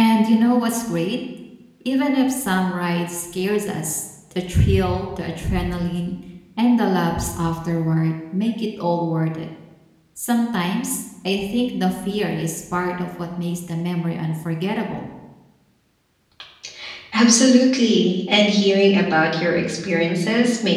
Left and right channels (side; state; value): both; identical; correlation 1.00